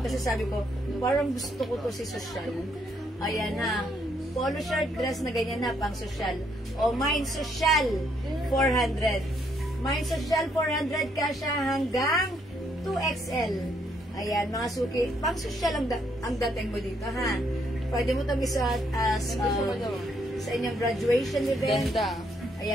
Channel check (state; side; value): normal; both; correlation 0.72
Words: sabi ko, parang gusto ko to si Social. Ayan ha. Polo shirt dress na ganyan na, pang Social. O, Mine Social, 400. Mine Social 400 kasya hanggang 2XL. Ayan, mga suki. Pang social ang dating mo dito, ha? Pwede mo itong isuot as sa inyong graduation event. Ganda.